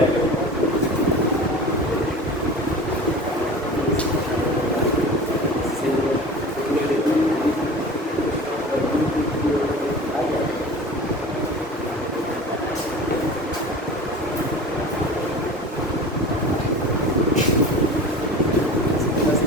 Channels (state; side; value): normal; both; correlation 0.37